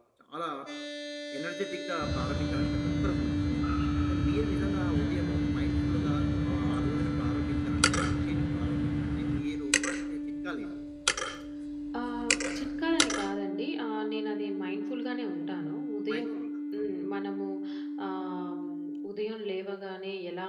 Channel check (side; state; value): both; identical; correlation 1.00